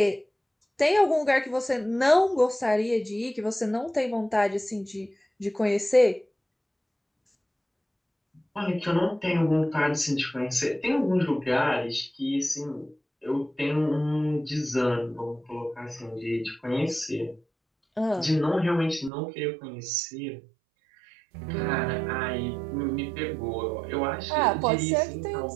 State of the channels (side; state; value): left; drops out; at 19.1 s